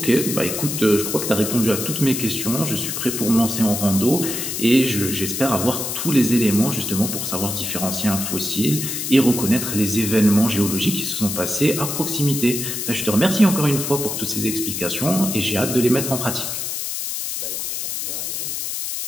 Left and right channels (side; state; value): left; noise; hiss, 3 dB below the sound